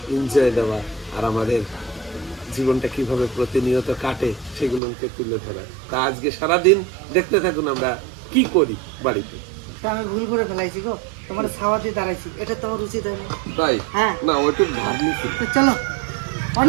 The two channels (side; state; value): left; drops out; at 4.8 s